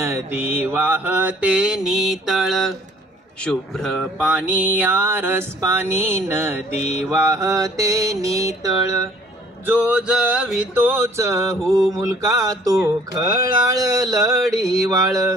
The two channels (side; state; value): both; normal; correlation 0.56